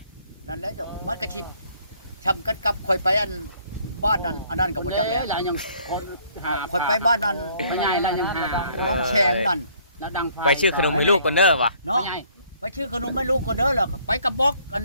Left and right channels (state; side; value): inverted; both; correlation -0.62